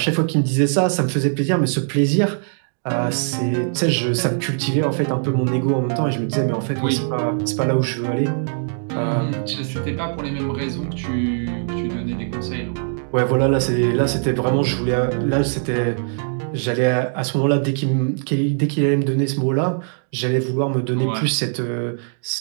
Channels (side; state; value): left; silent; digital silence